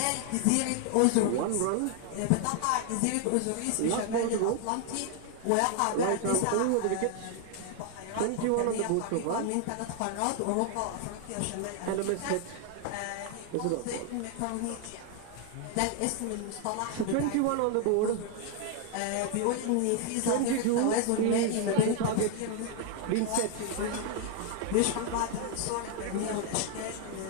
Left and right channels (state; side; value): different; both; correlation 0.00